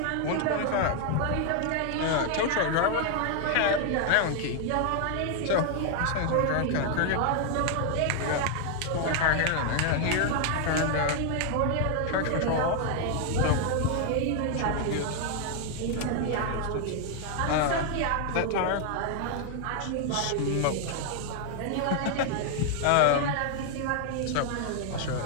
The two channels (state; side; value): different; both; correlation 0.00